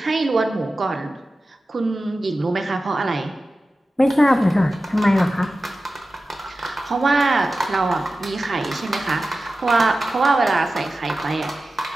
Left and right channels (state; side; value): normal; both; correlation 0.94